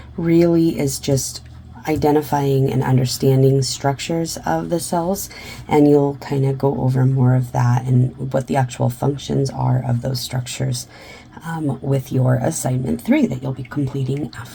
really is just identifying and understanding structures of the cells, and you'll kind of go over more of that and what the actual functions are of those structures with your assignment 3 that you'll be completing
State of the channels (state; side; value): identical; both; correlation 1.00